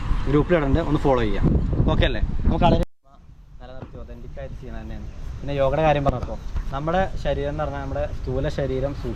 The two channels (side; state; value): both; identical; correlation 1.00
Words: ഗ്രൂപ്പിലിടുന്നുണ്ട്, ഒന്ന് ഫോളോ ചെയ്യാം. ഓക്കെ അല്ലേ? നമുക്ക് കളരി നിലനിർത്തി ഒതൻറ്റിക്കായിട്ട് ചെയ്യുന്നത് തന്നെയാണ്. പിന്നെ യോഗയുടെ കാര്യം പറഞ്ഞപ്പോൾ നമ്മുടെ ശരീരം എന്ന് പറഞ്ഞാൽ നമ്മുടെ സ്ഥൂല ശരീരം,